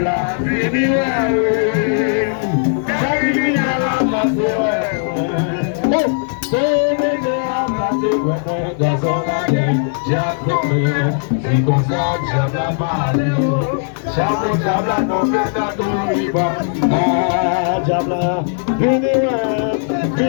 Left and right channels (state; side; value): silent; right; digital silence